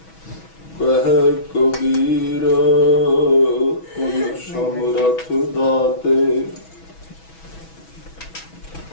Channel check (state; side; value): late; right; 6.2 ms